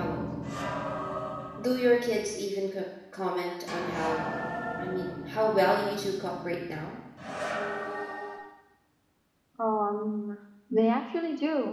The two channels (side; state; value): both; identical; correlation 1.00